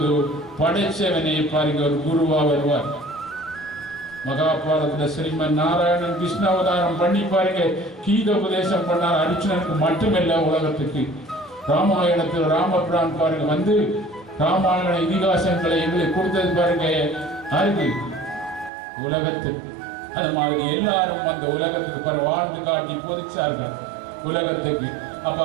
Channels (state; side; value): drops out; left; at 18.7 s